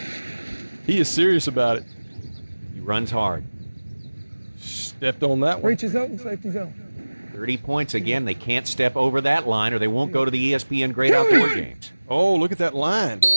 he is serious about it. He runs hard. Stepped on that one. Reaches open, safety zone. 30 points again. They can't step over that line or they won't go to the ESPN Great Outdoor Games. Oh, look at that line.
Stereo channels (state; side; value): inverted; both; correlation -1.00